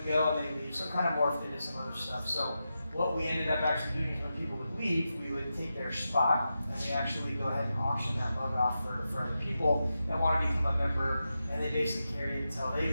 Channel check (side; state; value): both; inverted; correlation -0.89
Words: go, and they leave. So it kind of morphed into some other stuff. So what we ended up actually doing is when people would leave, we would take their spot, and we actually go ahead and auction that mug off for other people that want to become a member, and they basically carry it until they